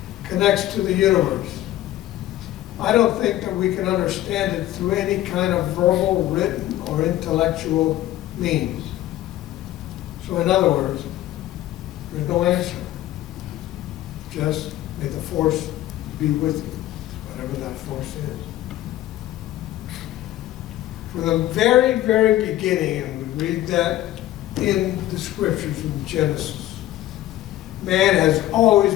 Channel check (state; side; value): quieter; right; 14.4 dB